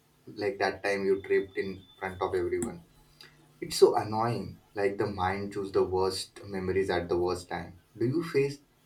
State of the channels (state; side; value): identical; both; correlation 1.00